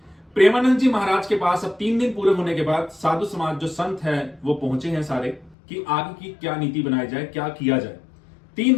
प्रेमानंद जी महाराज के पास अब 3 दिन पूरे होने के बाद साधु समाज जो संत है वो पहुंचे हैं सारे, कि आगे की क्या नीति बनाई जाए, क्या किया जाए।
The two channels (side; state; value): right; drops out; at 5.6 s